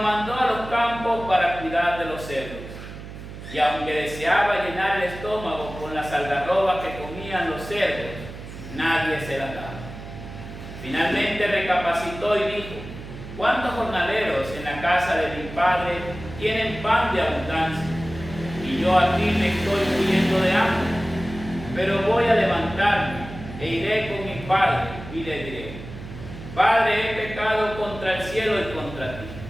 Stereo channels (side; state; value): right; noise; hum, 12 dB below the sound